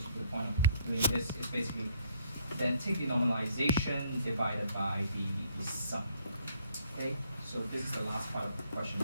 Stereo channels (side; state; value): both; inverted; correlation -0.65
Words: the point of doing this, is basically then take the normalization divided by the sum. Okay, so this is the last part of question